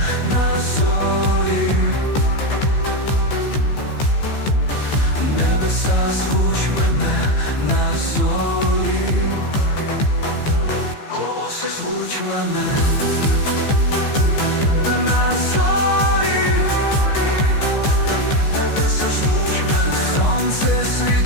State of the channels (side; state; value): right; late; 15 ms